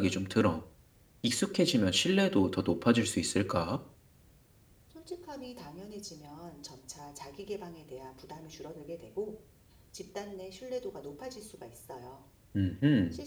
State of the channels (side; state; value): both; identical; correlation 1.00